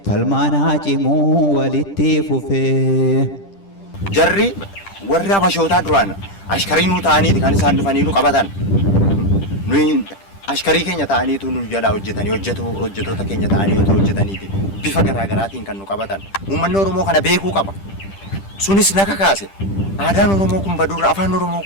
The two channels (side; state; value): right; late; 10 ms